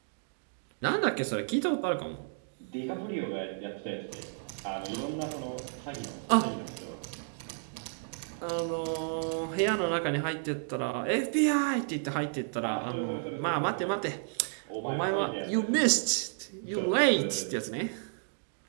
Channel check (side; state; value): left; silent; digital silence